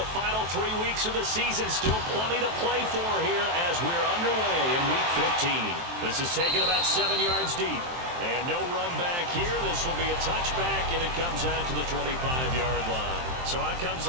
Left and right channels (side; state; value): left; late; 23 ms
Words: final 3 weeks of the season. Still plenty to play for here as we're underway in Week 15. This is taken about 7 yards deep. And no run back here. This will be a touchback, and it comes out to the 25-yard line. So out comes